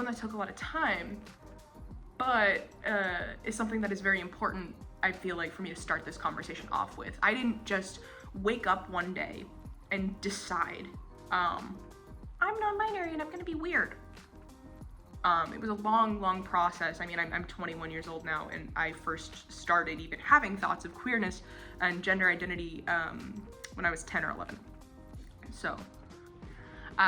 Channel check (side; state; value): both; identical; correlation 1.00